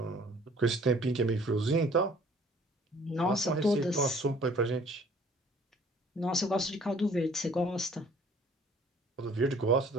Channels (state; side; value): normal; both; correlation 0.55